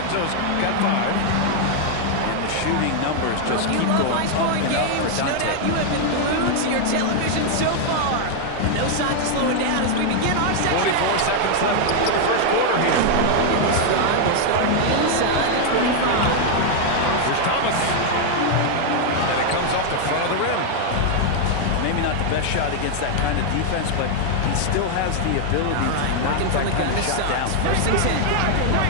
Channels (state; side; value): different; both; correlation 0.00